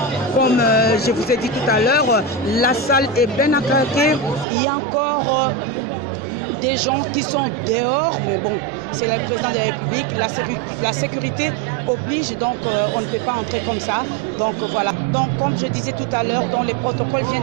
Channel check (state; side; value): drops out; left; at 4.5 s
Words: Comme je vous ai dit tout à l'heure, la salle est bien à craquer. Il y a encore des gens qui sont dehors, mais bon, c'est le président de la République, la sécurité oblige, donc on ne peut pas entrer comme ça. Donc voilà. Donc comme je disais tout à l'heure, les protocoles